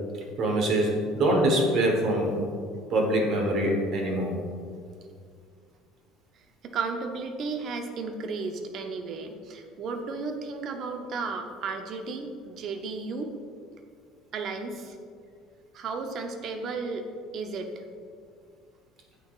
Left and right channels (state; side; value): normal; both; correlation 0.52